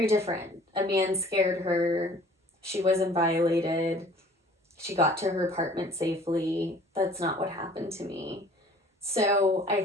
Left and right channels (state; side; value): normal; both; correlation 0.51